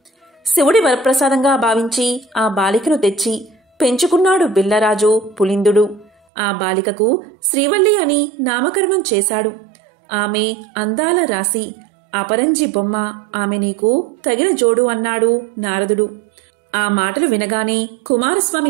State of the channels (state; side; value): drops out; left; at 6.1 s